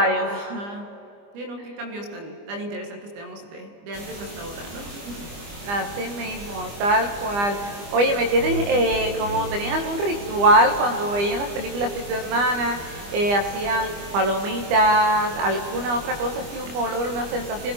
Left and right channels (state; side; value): late; left; 25 ms